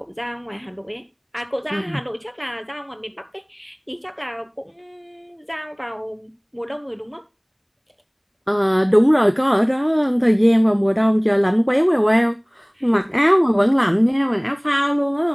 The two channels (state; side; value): identical; both; correlation 1.00